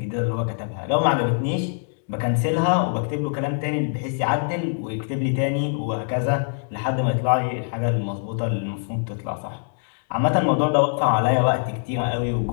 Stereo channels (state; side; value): silent; right; digital silence